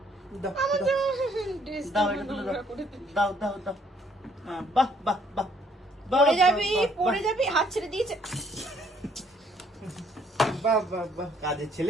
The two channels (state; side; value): normal; both; correlation 0.65